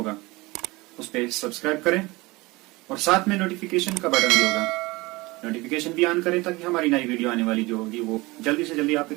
اس پہ سبسکرائب کریں اور ساتھ میں نوٹیفیکیشن کا بٹن بھی ہوگا, نوٹیفیکیشن بھی آن کریں تاکہ ہماری نئی ویڈیو آنے والی جو ہوگی وہ جلدی سے جلدی آپ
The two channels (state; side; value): quieter; left; 22.3 dB